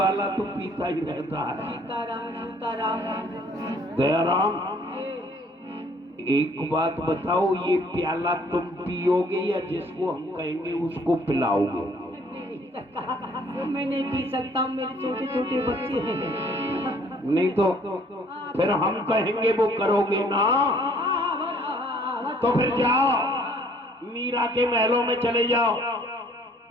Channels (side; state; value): both; normal; correlation 0.59